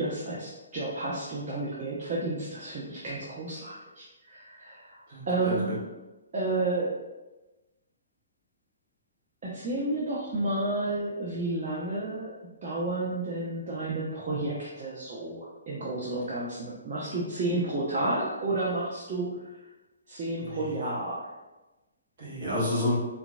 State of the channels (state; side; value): inverted; both; correlation -0.34